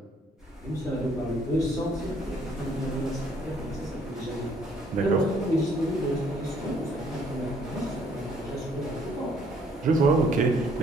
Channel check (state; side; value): normal; both; correlation 0.64